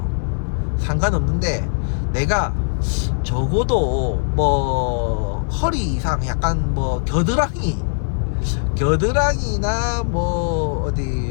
상관없는데, 내가 적어도 뭐 허리 이상 약간 뭐 겨드랑이나 뭐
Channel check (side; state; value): right; silent; digital silence